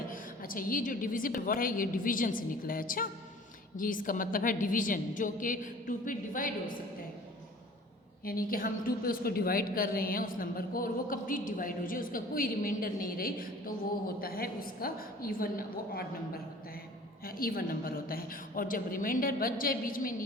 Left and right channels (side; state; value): both; normal; correlation 0.47